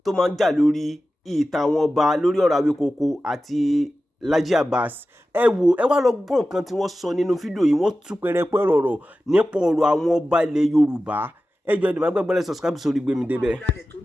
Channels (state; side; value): normal; both; correlation 0.94